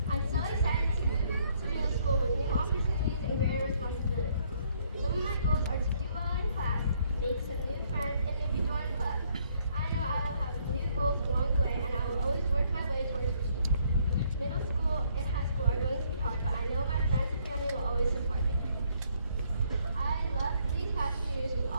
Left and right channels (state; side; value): inverted; both; correlation -0.67